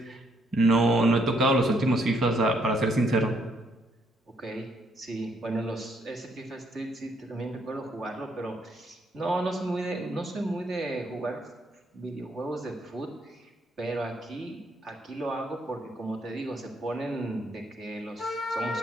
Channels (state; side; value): normal; both; correlation 0.72